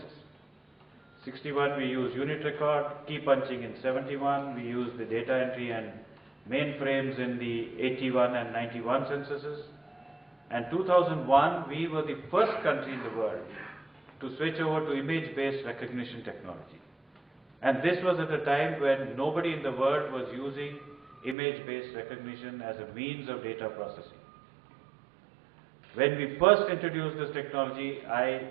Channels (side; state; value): left; drops out; at 21.4 s